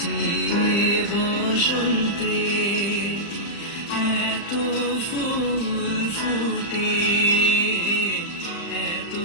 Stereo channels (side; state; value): right; late; 35 ms